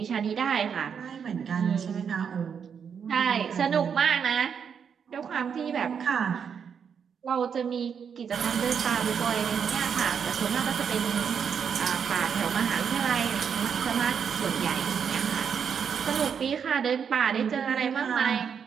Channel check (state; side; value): quieter; left; 7.1 dB